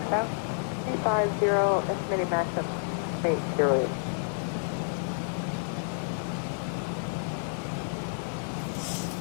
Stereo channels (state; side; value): silent; right; digital silence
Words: 350, estimated max of 808.